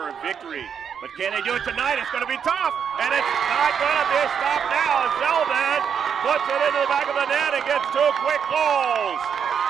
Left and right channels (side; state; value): left; quieter; 7.4 dB